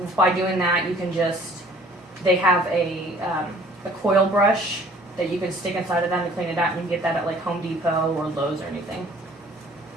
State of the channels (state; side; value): normal; both; correlation 0.53